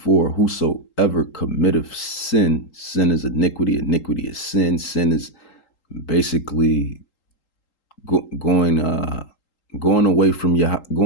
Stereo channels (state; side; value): late; right; 3.8 ms